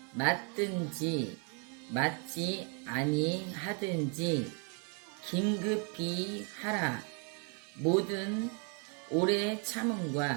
맞든지 맞지 아니하든지 긴급히 하라. 모든 오래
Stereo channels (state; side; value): quieter; left; 37.4 dB